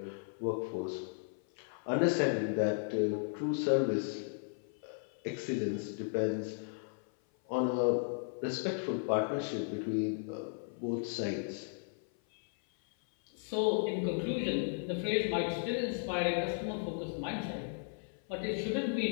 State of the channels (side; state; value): right; silent; 54 dB below the other